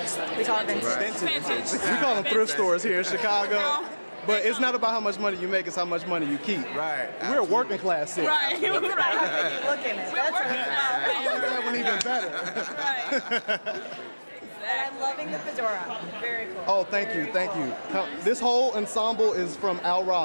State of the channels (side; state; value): both; inverted; correlation -1.00